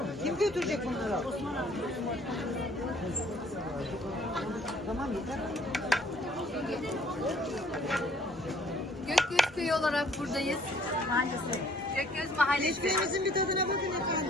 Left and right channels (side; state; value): both; normal; correlation 0.58